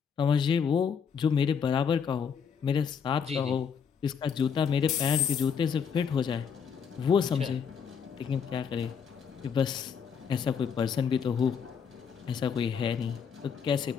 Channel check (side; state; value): right; quieter; 6.8 dB